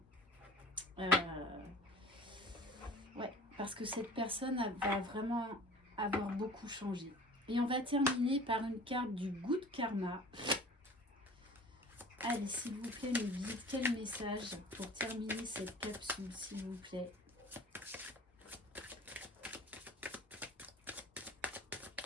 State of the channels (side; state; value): both; normal; correlation 0.43